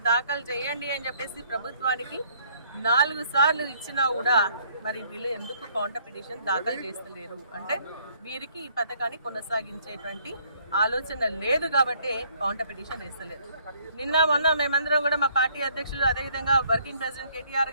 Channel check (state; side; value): inverted; both; correlation -0.63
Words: దాఖలు చేయండి అని చెప్పేసి ప్రభుత్వానికి 4 సార్లు ఇచ్చినా కూడా మరి వీళ్ళు ఎందుకు కౌంటర్ పిటిషన్ దాఖలు చేస్తలేరు అంటే వీరికి ఈ పథకాన్ని కొనసాగించేటువంటి ఆలోచన లేదు కాబట్టి కౌంటర్ పిటిషన్ వేస్తలేరు. మొన్న మేమందరం కూడా మా పార్టీ అధ్యక్షులు అదేవిధంగా వర్కింగ్ ప్రెసిడెంట్